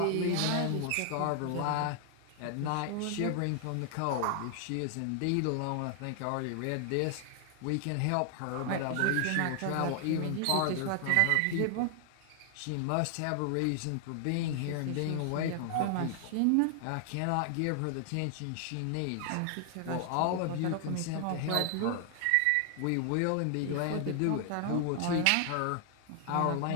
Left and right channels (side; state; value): both; different; correlation 0.00